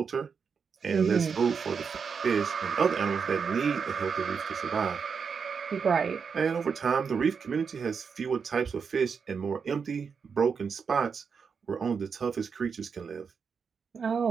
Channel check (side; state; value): left; quieter; 6.0 dB